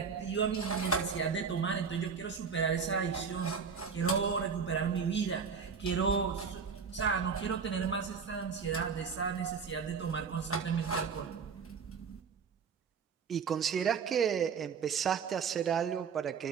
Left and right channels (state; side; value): quieter; left; 6.0 dB